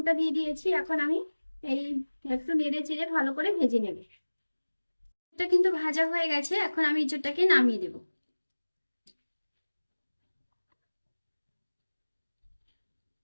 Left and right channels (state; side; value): inverted; both; correlation -1.00